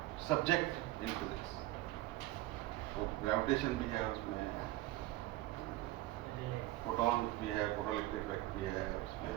subject in physics. तो ग्रेविटेशन भी है उसमें, फोटॉन भी है, फोटोइलेक्ट्रिक इफेक्ट भी है उसमें,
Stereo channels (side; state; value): left; quieter; 16.8 dB